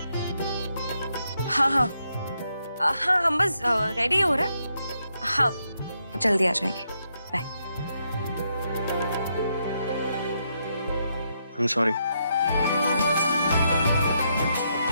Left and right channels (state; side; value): inverted; both; correlation -0.79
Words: हाँ हाँ हाँ, हम बस रेडी हो रहे हैं। हाँ, जल्दी आ जाएंगे। बाय। I'm sorry.